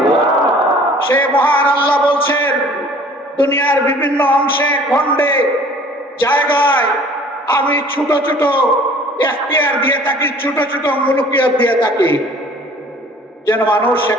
সে মহান আল্লাহ বলছেন, দুনিয়ার বিভিন্ন অংশে, খণ্ডে, জায়গায় আমি ছোট ছোট এখতিয়ার দিয়ে থাকি, ছোট ছোট মুলকিয়ত দিয়ে থাকি, যেন মানুষ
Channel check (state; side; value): normal; both; correlation 0.50